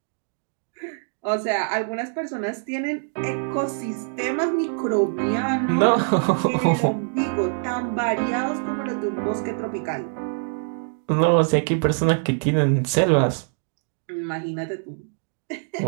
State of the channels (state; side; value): silent; left; digital silence